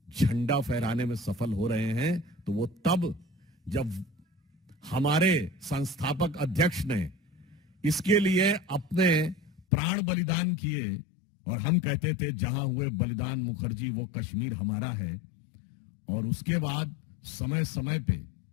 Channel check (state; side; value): drops out; right; at 9.6 s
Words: झंडा फहराने में सफल हो रहे हैं तो वो तब जब हमारे संस्थापक अध्यक्ष ने इसके लिए अपने प्राण बलिदान किए, और हम कहते थे जहां हुए बलिदान मुखर्जी वो कश्मीर हमारा है। और उसके बाद समय समय पे